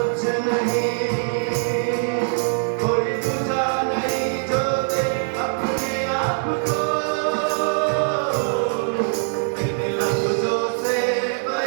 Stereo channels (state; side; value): silent; left; digital silence